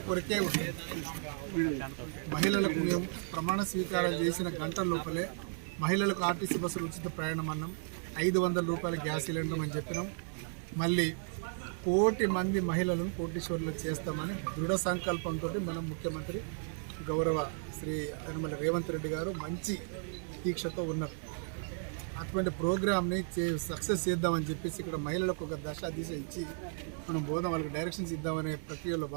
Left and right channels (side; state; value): left; silent; 55 dB below the other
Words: కొరకే ఉంది. మహిళలకు మేము ప్రమాణ స్వీకారం చేసిన గంటల లోపలే మహిళలకు ఆర్టీసీ బస్సులు ఉచిత ప్రయాణం అన్నాం, 500 రూపాయల గ్యాస్ సిలిండర్ అని చెప్పినాం. మళ్ళీ 1 కోటి మంది మహిళలను కోటీశ్వరులు చేస్తామని దృఢ సంకల్పంతో మన ముఖ్యమంత్రి గౌరవ శ్రీ యనమల రేవంత్ రెడ్డి గారు మంచి దీక్షతో ఉన్నారు. అటువంటి ప్రోగ్రామ్ని సక్సెస్ చేద్దామని చెప్పేసి ఇక్కడ మహిళలకు ఒక దిశ ఇచ్చి మనం బోధం వాళ్ళకి డైరెక్షన్స్ ఇద్దామనే ప్రక్రియలో